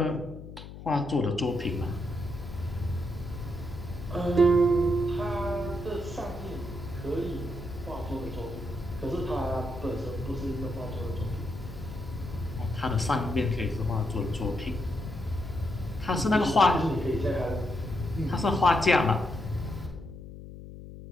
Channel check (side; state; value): left; noise; hum, 13 dB below the sound